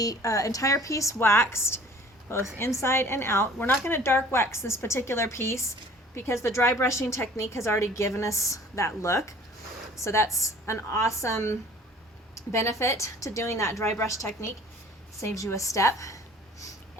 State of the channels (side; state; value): both; normal; correlation 0.50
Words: entire piece waxed, both inside and out. We're not going to dark wax this particular piece because the dry brushing technique has already given us that look. So that's an awesome benefit to doing that dry brush technique. Saves you a step.